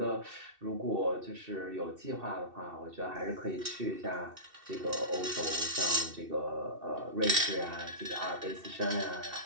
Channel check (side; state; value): left; late; 2.7 ms